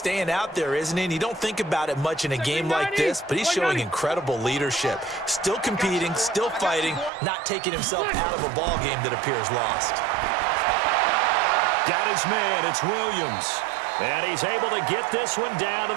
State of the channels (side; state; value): left; drops out; at 7.1 s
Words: out there, isn't he? And you don't think about it much in a game like this, but he's showing incredible leadership. Still competing, still fighting, not taking himself out of a ball game that appears lost. Got his man. It's Williams. And he's able to get this one down to